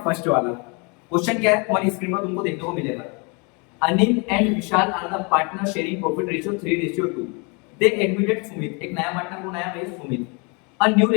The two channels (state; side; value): quieter; right; 31.9 dB